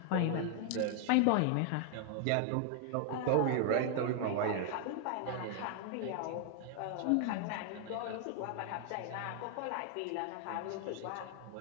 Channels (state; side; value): different; both; correlation 0.00